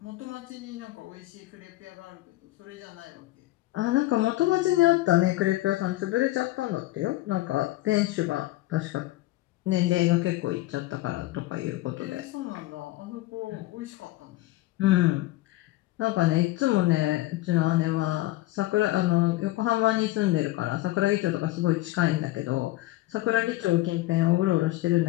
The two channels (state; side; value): quieter; right; 17.5 dB